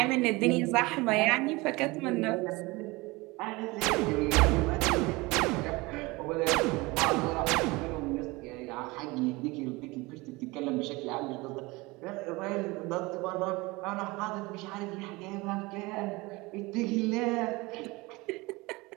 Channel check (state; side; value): quieter; left; 23.2 dB